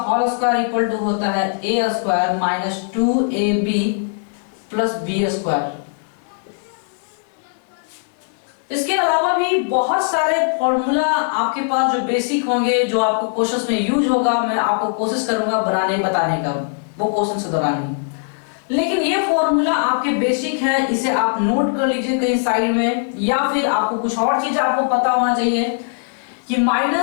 whole square equal to होता है a square minus 2ab plus b square. इसके अलावा भी बहुत सारे फॉर्मूला आपके पास जो बेसिक होंगे, जो आपको क्वेश्चंस में यूज होगा, मैं आपको कोशिश करूंगा बताने का वो क्वेश्चन के दौरान ही। लेकिन ये फॉर्मूला आपके बेसिक है, इसे आप नोट कर लीजिए कहीं साइड में, या फिर आपको कुछ और चीज आपको पता होना चाहिए कि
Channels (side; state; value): right; silent; 66 dB below the other